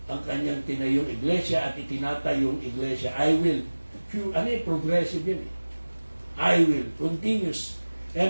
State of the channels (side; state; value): both; inverted; correlation -1.00